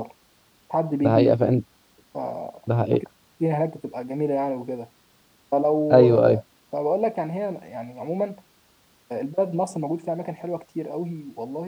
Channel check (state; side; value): identical; both; correlation 1.00